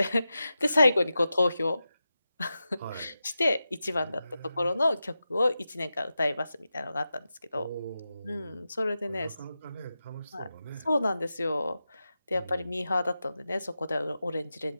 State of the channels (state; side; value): inverted; both; correlation -0.91